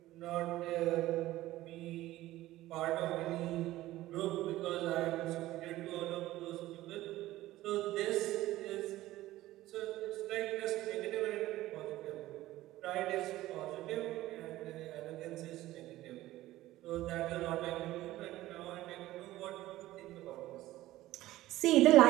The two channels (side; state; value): left; quieter; 16.0 dB